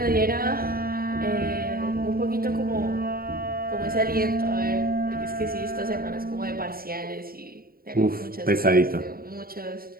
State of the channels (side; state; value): left; late; 0.43 ms